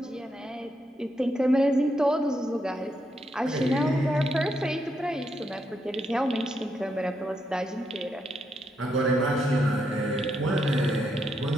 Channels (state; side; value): normal; both; correlation 0.80